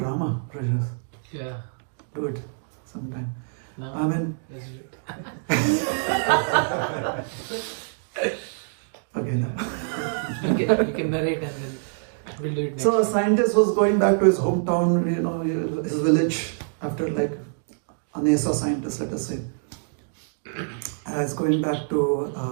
Rajas. Yeah. Do it sometime. No. I mean... Okay, no. You can narrate and then we'll do it next. So a scientist was going back to his hometown, his village, after like a NASA scientist, let us say. He's going back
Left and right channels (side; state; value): left; silent; digital silence